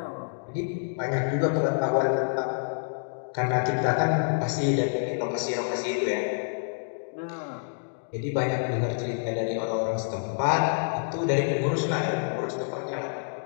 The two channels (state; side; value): silent; right; digital silence